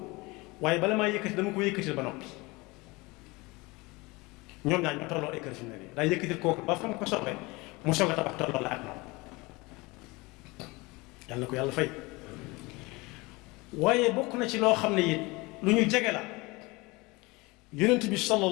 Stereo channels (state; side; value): quieter; right; 24.0 dB